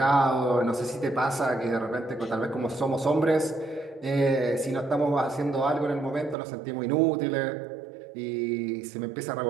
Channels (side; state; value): left; drops out; at 6.4 s